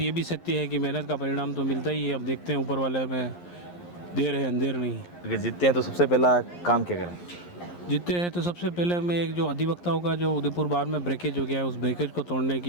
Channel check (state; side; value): late; right; 11 ms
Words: ये भी सत्य है कि मेहनत का परिणाम तो मिलता ही है। अब देखते हैं ऊपर वाले में देर है अंधेर नहीं। अगर जीतते हैं तो सबसे पहला काम क्या करें? जीतते हैं तो सबसे पहले मैं एक जो अधिवक्ताओं का जो उदयपुर बार में ब्रेकेज हो गया है, उस ब्रेकेज को तोड़ने